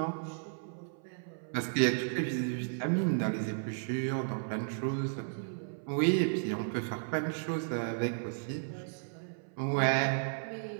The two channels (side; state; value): left; silent; 55 dB below the other